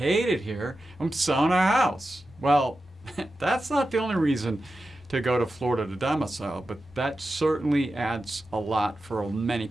it here. I'm selling our house." Well, that's not the only reason to go to Florida to domicile, but that certainly adds a lot for many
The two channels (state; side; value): normal; both; correlation 0.92